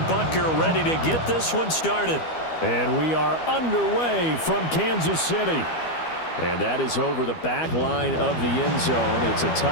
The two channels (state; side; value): late; right; 12 ms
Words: Butker, ready to get this one started. And we are underway from Kansas City. And that is over the back line of the end zone. It's a